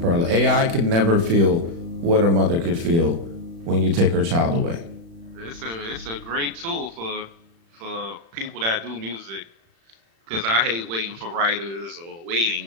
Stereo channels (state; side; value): late; left; 36 ms